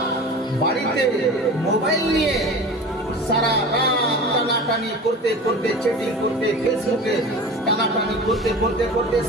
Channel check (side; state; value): both; normal; correlation 0.35